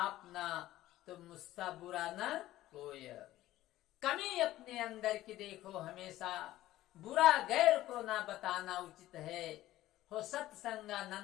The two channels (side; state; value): right; quieter; 15.1 dB